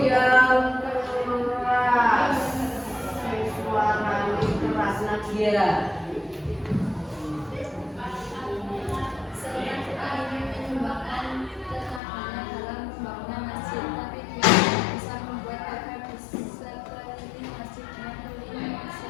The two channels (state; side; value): drops out; right; at 12.0 s